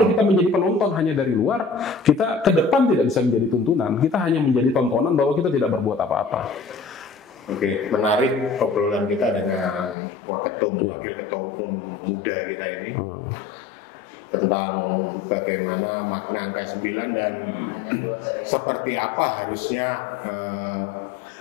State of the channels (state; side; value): drops out; right; at 10.0 s